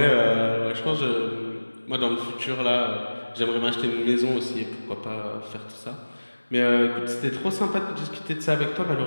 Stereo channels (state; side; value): inverted; both; correlation -1.00